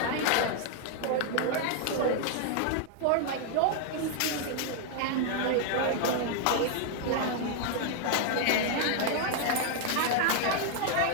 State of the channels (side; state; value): both; different; correlation 0.00